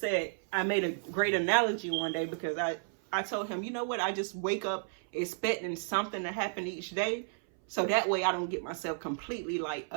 I made a great analogy one day, because I told him, you know what, I just wake up expecting something to happen each day, so that way I don't get myself completely like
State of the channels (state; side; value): silent; left; 56 dB below the other